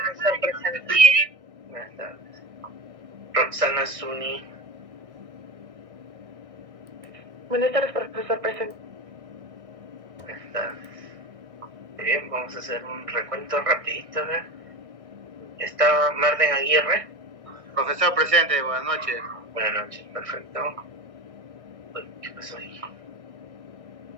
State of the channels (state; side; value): late; left; 1.6 ms